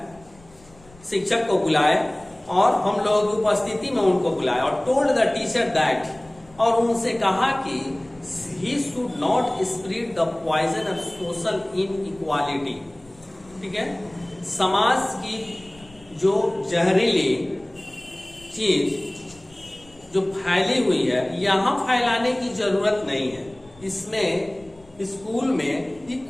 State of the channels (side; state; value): left; noise; rumble, 26 dB below the sound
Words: शिक्षक को बुलाए और हम लोगों की उपस्थिति में उनको बुलाया और टोल्ड द टीचर दैट, और उनसे कहा कि he should not spread the poison of social inequality, ठीक है। समाज की जो जहरीली चीज जो फैली हुई है, यहां फैलाने की जरूरत नहीं है। इसमें स्कूल में